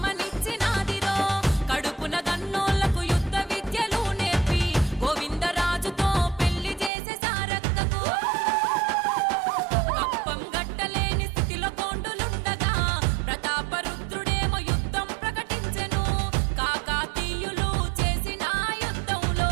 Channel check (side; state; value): left; drops out; at 6.9 s